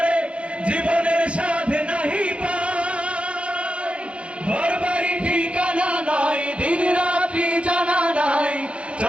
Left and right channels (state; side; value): late; left; 0.060 ms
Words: জীবনের স্বাদ নাহি পায়। ঘর বাড়ি ঠিকানা নাই, দিন রাত্রি জানা নাই,